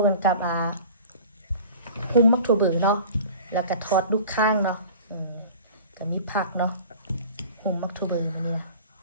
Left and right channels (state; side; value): inverted; both; correlation -0.42